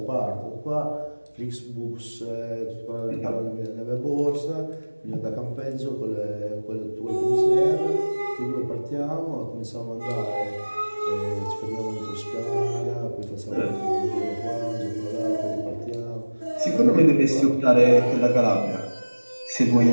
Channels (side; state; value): both; inverted; correlation -1.00